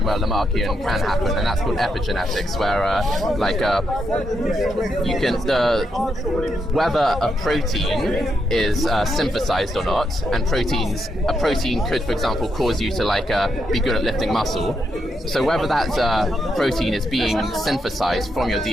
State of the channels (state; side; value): normal; both; correlation 0.81